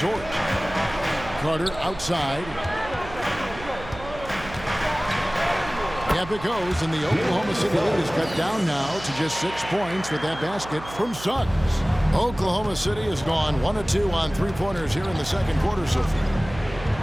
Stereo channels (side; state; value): right; noise; hum, 15 dB below the sound